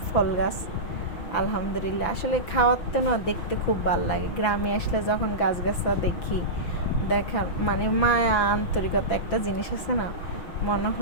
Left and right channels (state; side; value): late; right; 6.0 ms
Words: ফল গাছ। আলহামদুলিল্লাহ আসলে খাওয়াতে না দেখতে খুব ভালো লাগে। গ্রামে আসলে যখন গাছগাছা দেখি, দেখার মানে মায়া আন্তরিকতা একটা জিনিস আছে না, মনে